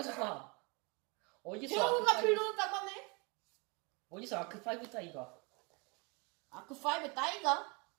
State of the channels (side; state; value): left; quieter; 30.2 dB